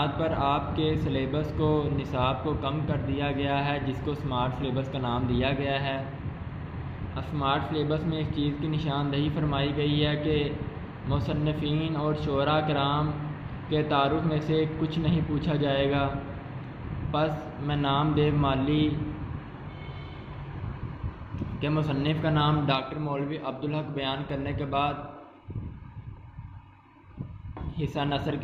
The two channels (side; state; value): both; identical; correlation 1.00